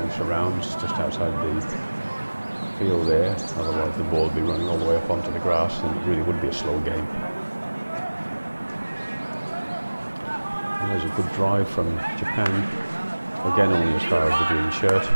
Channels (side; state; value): both; inverted; correlation -1.00